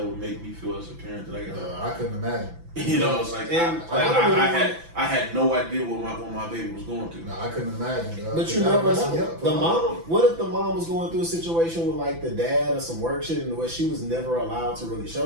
make me feel as a parent. That I couldn't imagine. You know, it's like I had no idea what my baby was going through. No, I couldn't imagine. But you never know. The mom. What if the mom was going through a situation with like the dad or some work shit, and where she was never allowed to really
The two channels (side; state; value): left; late; 6.0 ms